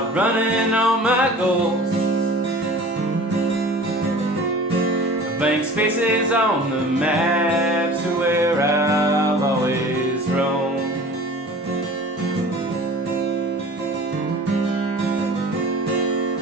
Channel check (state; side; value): normal; both; correlation 0.42